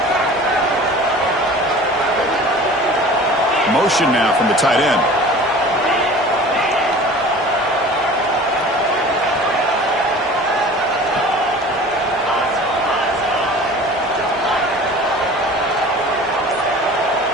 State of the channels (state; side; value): normal; both; correlation 0.42